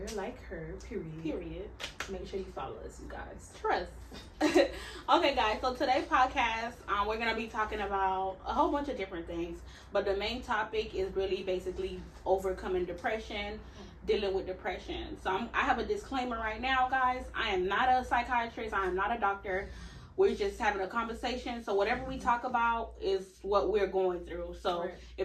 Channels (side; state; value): both; identical; correlation 1.00